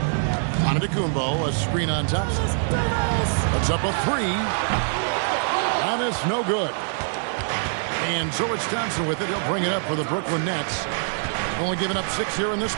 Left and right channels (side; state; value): left; silent; 63 dB below the other